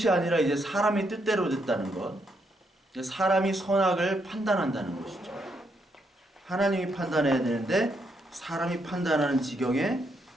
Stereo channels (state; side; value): normal; both; correlation 0.77